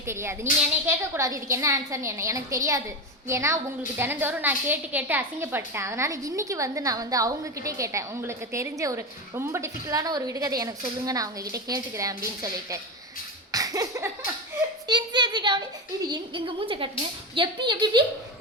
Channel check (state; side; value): normal; both; correlation 0.18